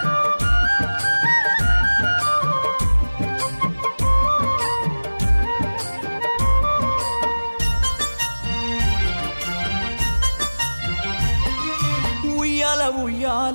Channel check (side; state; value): both; inverted; correlation -1.00